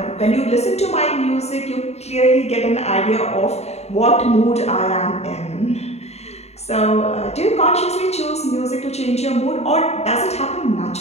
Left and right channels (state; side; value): late; right; 0.31 ms